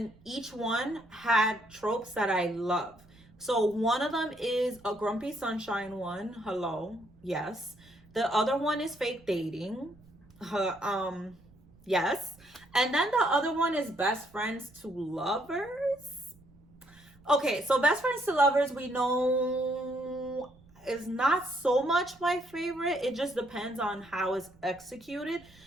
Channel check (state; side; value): noise; right; rumble, 27 dB below the sound